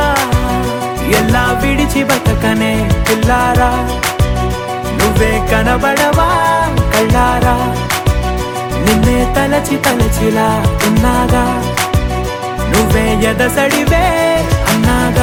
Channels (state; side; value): identical; both; correlation 1.00